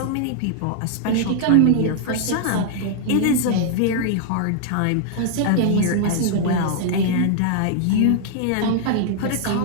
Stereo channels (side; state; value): both; different; correlation -0.01